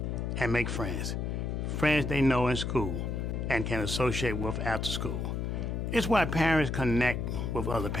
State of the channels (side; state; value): left; noise; hum, 2 dB below the sound